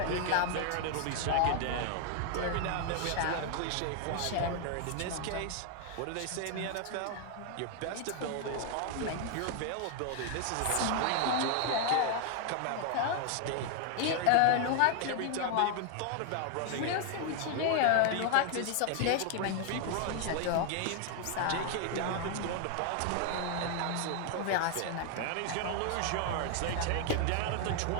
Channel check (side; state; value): both; different; correlation 0.00